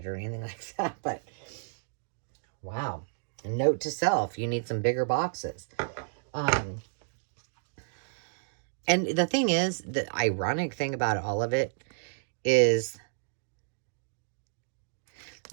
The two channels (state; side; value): silent; left; digital silence